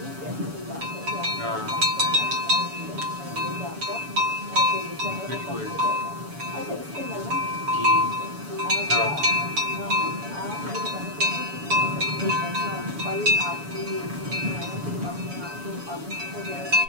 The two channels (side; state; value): left; late; 7.0 ms